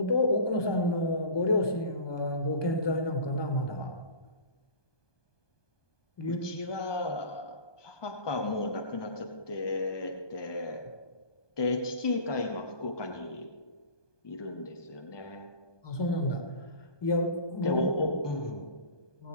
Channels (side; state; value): right; late; 1.2 ms